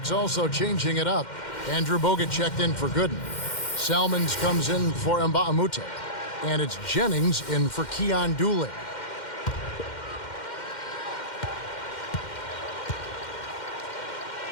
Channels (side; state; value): right; late; 2.1 ms